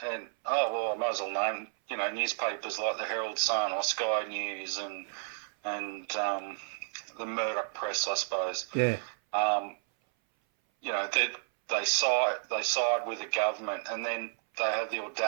I might as well name newspapers like the Herald Sun or Sky News and the Murdoch Press, I suppose. Yeah. They side with the government, and then they have the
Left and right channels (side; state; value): left; silent; 57 dB below the other